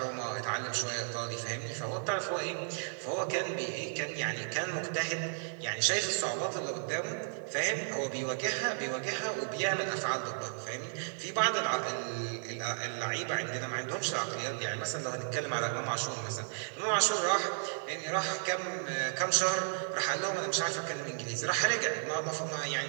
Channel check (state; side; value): silent; left; digital silence